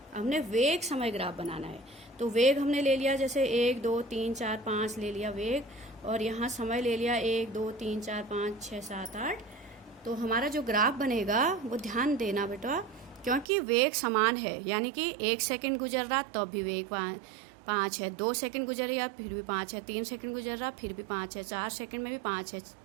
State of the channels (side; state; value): left; drops out; at 13.5 s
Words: हमने वेग समय ग्राफ बनाना है, तो वेग हमने ले लिया, जैसे 1 2 3 4 5 ले लिया वेग, और यहाँ समय ले लिया 1 2 3 4 5 6 7 8। तो हमारा जो ग्राफ बनेगा वो ध्यान देना बेटा, क्योंकि वेग समान है, यानी कि 1 सेकंड गुजर रहा तब भी वेग 5 है, 2 सेकंड गुजर रहा फिर भी 5 है, 3 सेकंड गुजर रहा फिर भी 5 है, 4 सेकंड में भी 5 है,